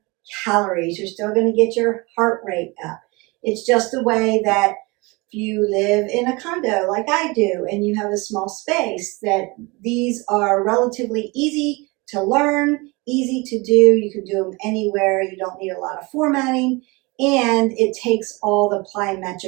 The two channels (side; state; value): left; quieter; 25.8 dB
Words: calories. You're still going to get your heart rate up. It's just a way that if you live in a condo like I do and you have a small space, that these are relatively easy to learn, easy to do. You can do them anywhere. You don't need a lot of formatting, and it takes all the